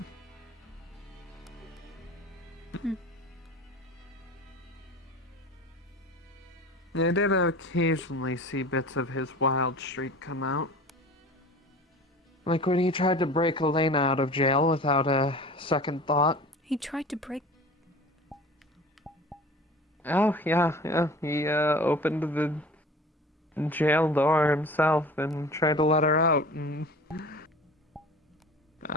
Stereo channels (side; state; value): both; normal; correlation 0.40